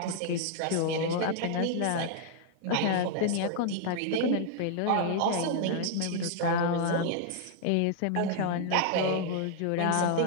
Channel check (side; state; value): both; different; correlation -0.01